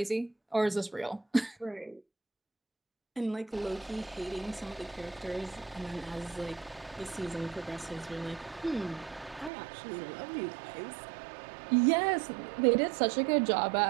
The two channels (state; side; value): drops out; left; at 9.5 s